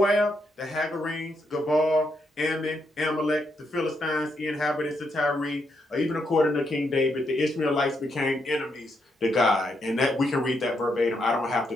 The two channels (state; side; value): normal; both; correlation 0.79